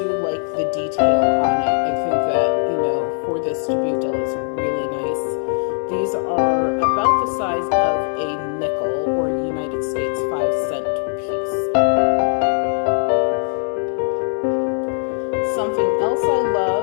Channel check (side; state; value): right; silent; 63 dB below the other